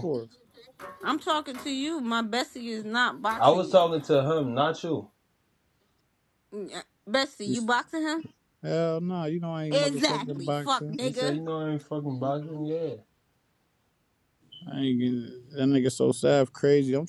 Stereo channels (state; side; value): identical; both; correlation 1.00